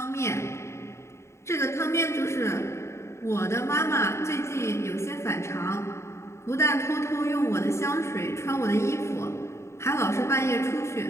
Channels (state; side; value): late; right; 0.13 ms